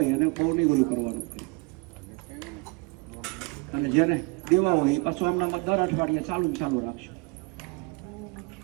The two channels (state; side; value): quieter; left; 29.6 dB